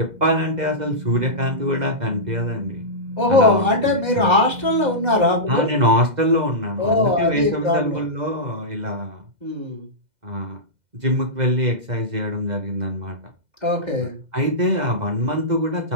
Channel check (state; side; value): late; left; 2.0 ms